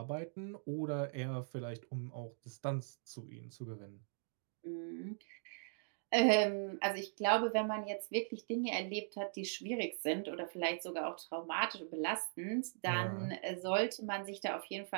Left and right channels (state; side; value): silent; left; digital silence